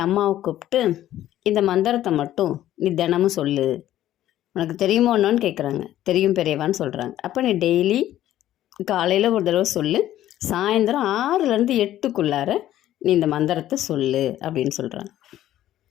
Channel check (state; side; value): quieter; right; 13.0 dB